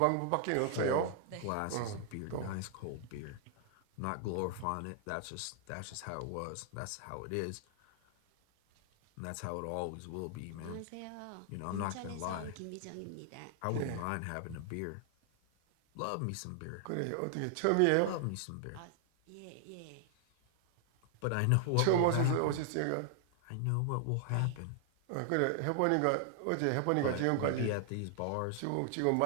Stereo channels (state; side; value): different; both; correlation 0.00